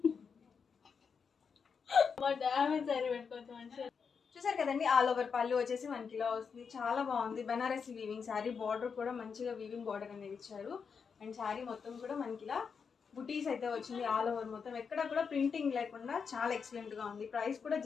చూసారు కదండి, ఆల్ ఓవర్ పళ్ళు వచ్చేసి మనకి ఇలా వస్తుంది, చాలా బాగుంది. బనారసి వీవింగ్ శారీ, బార్డర్ కూడా మంచిగా వీవింగ్ బార్డర్ అనేది ఇచ్చారు. అండ్ శారీ మొత్తం కూడా మనకి ఇలా బుటీస్ అయితే వచ్చింది. ఆల్ ఓవర్ మొత్తం ఎక్కడ కూడా ప్రింటింగ్ లేకుండా చాలా ఎక్సలెంట్ గా ఉంది. ప్రైస్ కూడా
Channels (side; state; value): right; quieter; 6.0 dB